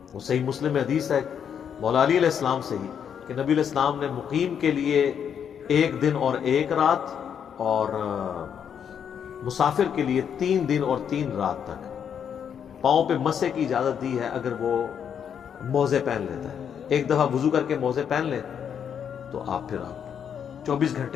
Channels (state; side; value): quieter; right; 8.1 dB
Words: وہ صحیح مسلم میں حدیث ہے مولا علی علیہ السلام سے ہی کہ نبی علیہ السلام نے مقیم کے لیے 1 دن اور 1 رات اور مسافر کے لیے 3 دن اور 3 رات تک پاؤں پہ مسح کی اجازت دی ہے اگر وہ موزے پہن لیتا ہے. ایک دفعہ وضو کر کے موزے پہن لے تو آپ پھر 24